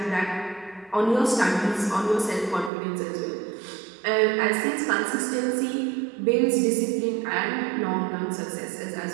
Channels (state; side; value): drops out; left; at 2.7 s